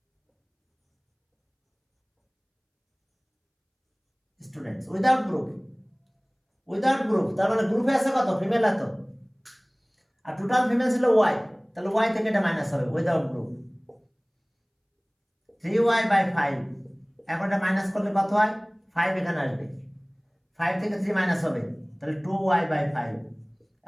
students without group, তার মানে গ্রুপে আছে কত? ফিমেল এত, আর টোটাল ফিমেল ছিল y, তাহলে y থেকে এটা মাইনাস হবে উইদাউট গ্রুপ, 3y by 5, এখন এটা মাইনাস করলে কত হয়? 5 এখানে আসবে, 5 থেকে 3 মাইনাস হবে, তাহলে 2y by 5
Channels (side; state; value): both; identical; correlation 1.00